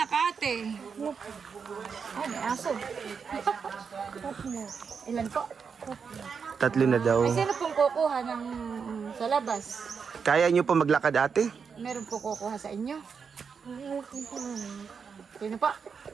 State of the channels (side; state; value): left; quieter; 6.0 dB